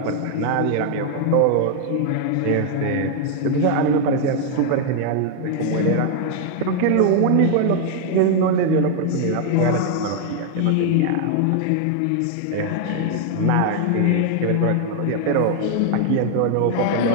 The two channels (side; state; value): both; different; correlation 0.00